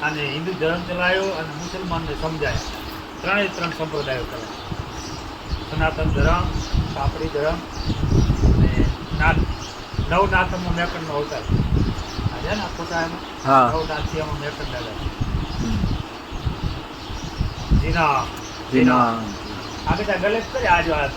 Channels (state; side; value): identical; both; correlation 1.00